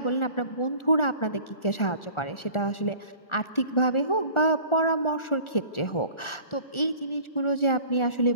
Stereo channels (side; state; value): right; late; 1.4 ms